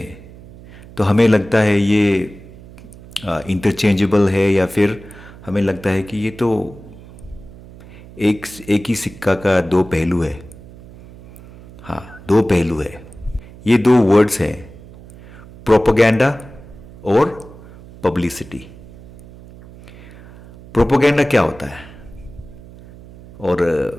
तो हमें लगता है ये इंटरचेंजेबल है, या फिर हमें लगता है कि ये तो एक ही सिक्का का दो पहलू है। हाँ, दो पहलू है। ये दो वर्ड्स हैं, प्रोपेगेंडा और पब्लिसिटी। प्रोपेगेंडा क्या होता है, और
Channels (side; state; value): right; noise; hum, 19 dB below the sound